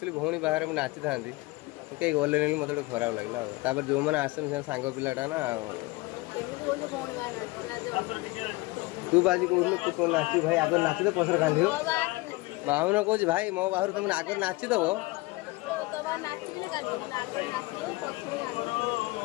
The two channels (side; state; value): right; quieter; 22.0 dB